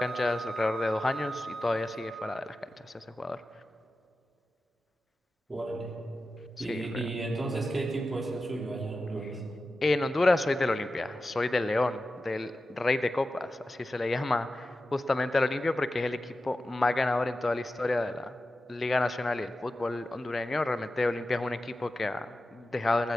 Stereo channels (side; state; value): both; normal; correlation 0.93